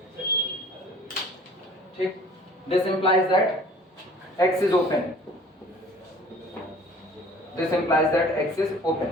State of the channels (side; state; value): both; normal; correlation 0.50